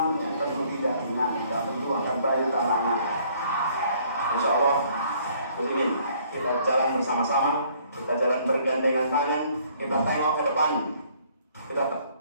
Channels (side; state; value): both; inverted; correlation -0.61